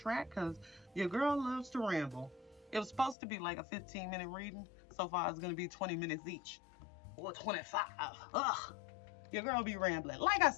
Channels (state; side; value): drops out; right; at 3.2 s